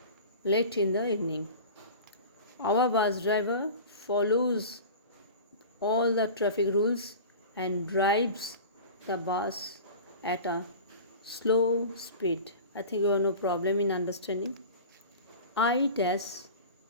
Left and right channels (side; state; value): both; inverted; correlation -0.36